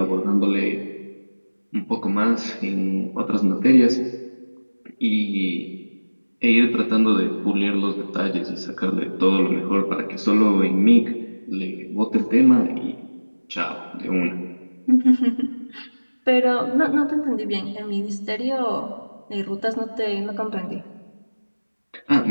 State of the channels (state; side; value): inverted; both; correlation -1.00